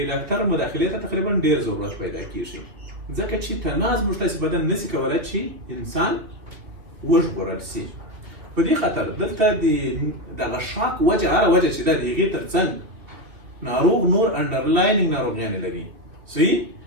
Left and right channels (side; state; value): left; late; 2.9 ms